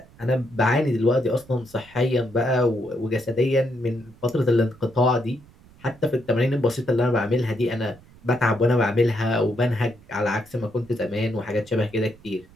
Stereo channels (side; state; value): right; noise; rumble, 25 dB below the sound